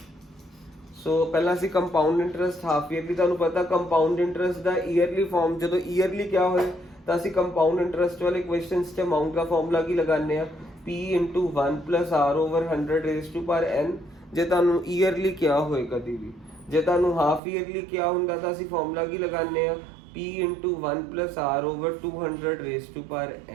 ਸੋ ਪਹਿਲਾਂ ਅਸੀਂ ਕੰਪਾਊਂਡ ਇੰਟਰਸਟ ਹਾਫ ਈਅਰਲੀ, ਤੁਹਾਨੂੰ ਪਤਾ ਕੰਪਾਊਂਡ ਇੰਟਰਸਟ ਦਾ ਈਅਰਲੀ ਫਾਰਮ ਜਦੋਂ ਈਅਰਲੀ ਕਿਆ ਹੋਏ ਤਾਂ ਅਸੀਂ ਕੰਪਾਊਂਡ ਇੰਟਰਸਟ ਵਾਲੇ ਕੁਐਸਚਨਸ 'ਚ ਅਮਾਊਂਟ ਦਾ ਫਾਰਮੂਲਾ ਕੀ ਲਗਾਉਂਦੇ ਆ p into 1 plus r over 100 raised to power n। ਜੇ ਤੁਹਾਨੂੰ ਈਅਰਲੀ ਕਿਹਾ ਹੋਏ ਕਦੀ ਵੀ, ਜੇ ਤੁਹਾਨੂੰ ਹਾਫ ਈਅਰਲੀ ਕਿਹਾ ਹੁੰਦਾ ਤਾਂ ਅਸੀਂ ਫਾਰਮੂਲਾ ਕੀ ਲਗਾਉਂਦੇ ਆ p into 1 plus r over 200 raised to power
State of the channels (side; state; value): left; drops out; at 17.4 s